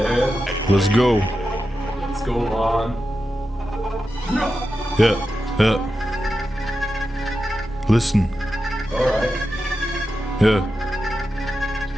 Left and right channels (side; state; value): both; normal; correlation 0.90